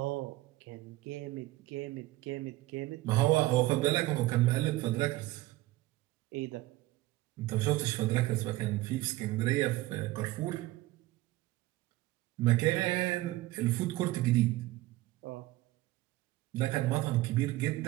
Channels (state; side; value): quieter; left; 18.0 dB